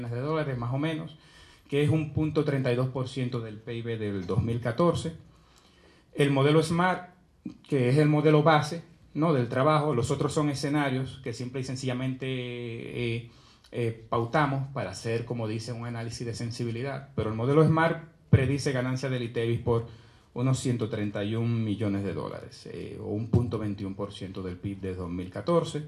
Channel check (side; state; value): both; identical; correlation 1.00